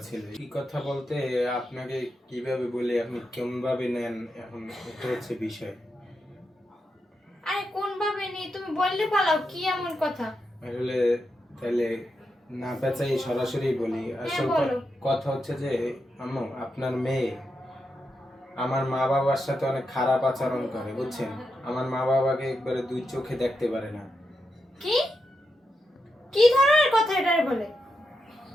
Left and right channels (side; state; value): both; normal; correlation 0.86